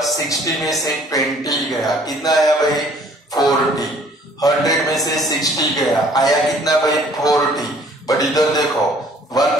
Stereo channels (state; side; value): normal; both; correlation 0.56